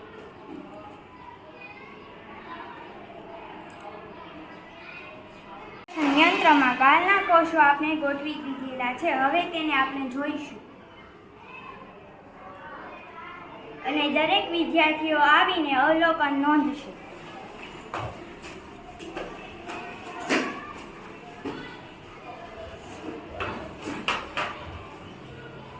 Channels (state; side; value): identical; both; correlation 1.00